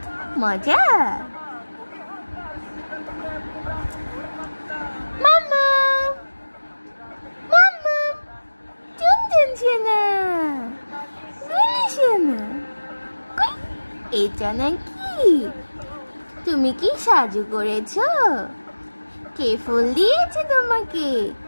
মজা। মাম্মা, মাম্মা, টুনটুন সোনা, গুলি সোনা, এটা নাকি? তুমি কি সাজু করেছো? কে ফুল দিয়েছে তোমাকে?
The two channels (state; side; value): inverted; both; correlation -1.00